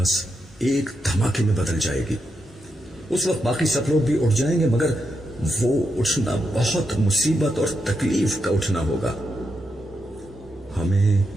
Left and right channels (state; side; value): normal; both; correlation 0.84